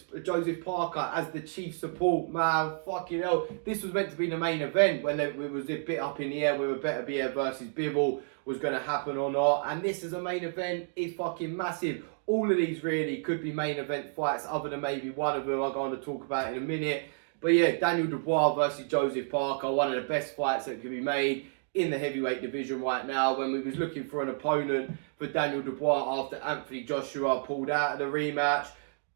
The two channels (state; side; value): silent; left; digital silence